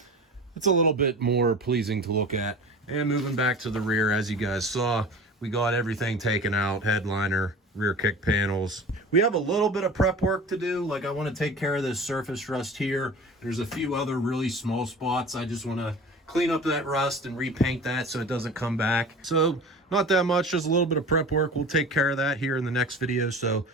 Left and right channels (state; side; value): normal; both; correlation 0.38